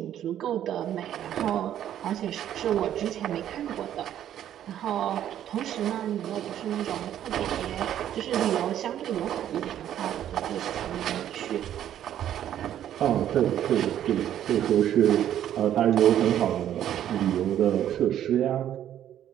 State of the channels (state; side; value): quieter; left; 11.0 dB